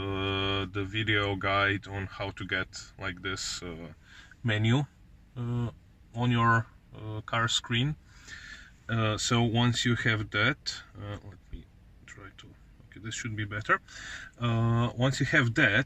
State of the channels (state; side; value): identical; both; correlation 1.00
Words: the video guide on how to get like this menu uh, on your car screen. So once you have that, let me try to, okay, this should be better. Once you have that,